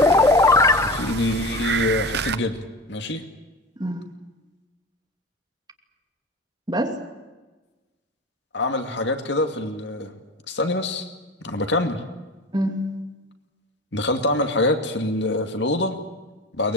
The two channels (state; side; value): normal; both; correlation 0.30